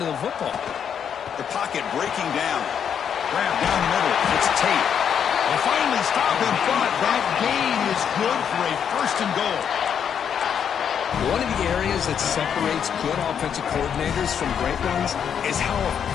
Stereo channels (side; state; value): right; quieter; 8.0 dB